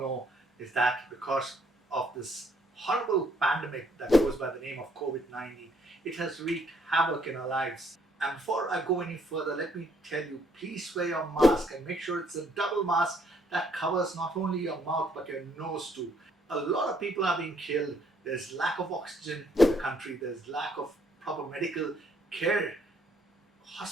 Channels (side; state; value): both; normal; correlation 0.67